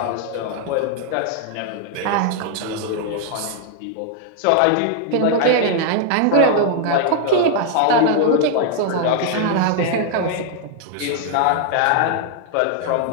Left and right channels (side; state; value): both; different; correlation 0.00